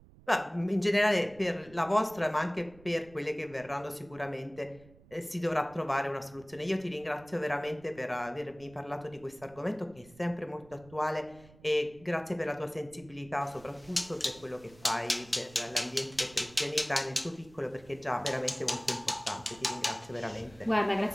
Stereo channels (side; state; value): right; noise; rumble, 23 dB below the sound